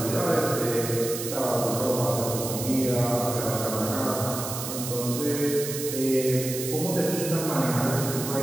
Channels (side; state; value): right; noise; hiss, 6 dB below the sound